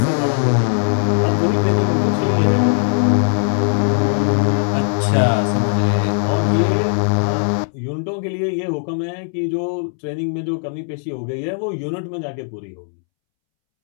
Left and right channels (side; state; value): right; silent; 67 dB below the other